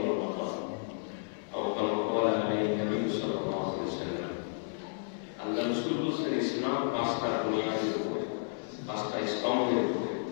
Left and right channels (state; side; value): silent; right; 56 dB below the other